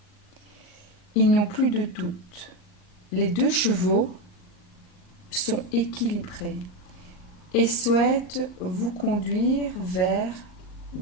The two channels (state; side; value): late; right; 38 ms